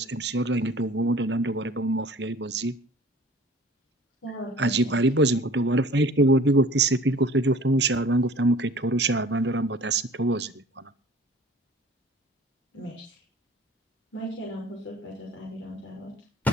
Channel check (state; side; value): normal; both; correlation 0.47